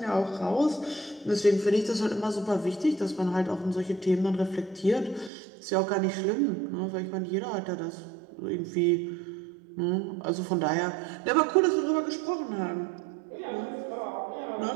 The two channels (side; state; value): left; drops out; at 5.3 s